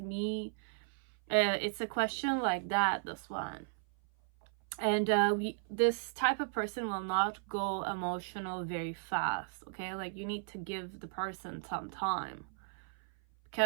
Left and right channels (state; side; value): silent; left; 54 dB below the other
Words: It's a question like that, this one. And this type of person will not go emotional very fast, okay? Like you need to give the person some time,